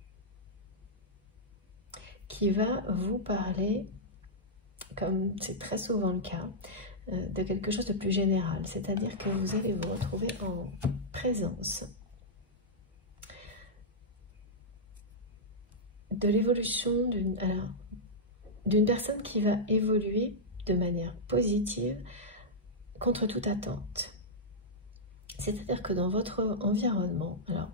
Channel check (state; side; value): normal; both; correlation -0.08